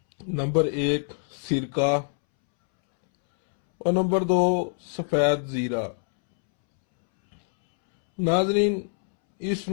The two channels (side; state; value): right; silent; 62 dB below the other